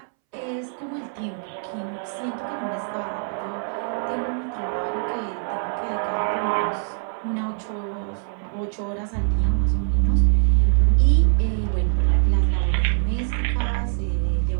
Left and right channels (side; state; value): left; silent; 63 dB below the other